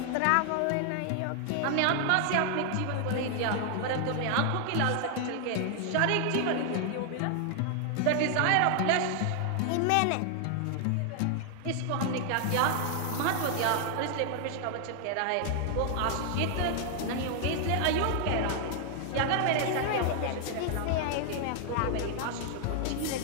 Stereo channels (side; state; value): both; different; correlation 0.00